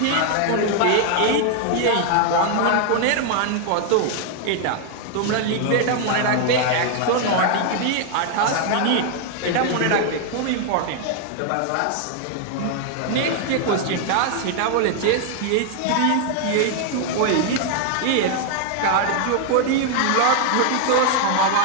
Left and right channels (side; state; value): both; different; correlation 0.00